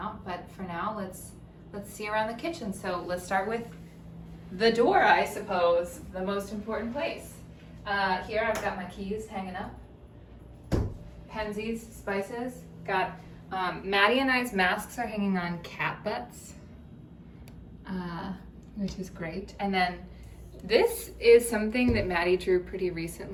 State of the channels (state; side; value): identical; both; correlation 1.00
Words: But for now, let's see around the kitchen. So let's start with the door, I suppose, the most important place. Here I've got my keys hanging up. Pensies, spices. Got Maddie and I's masks are hanging on cat butts, which is great. And then this is something that Maddie drew pretty